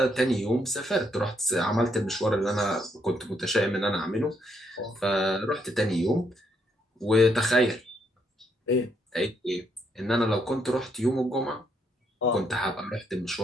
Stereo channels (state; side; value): normal; both; correlation 0.74